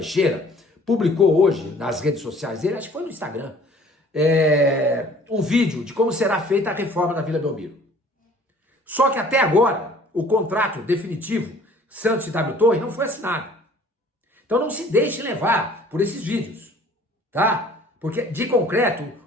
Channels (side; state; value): both; normal; correlation 0.53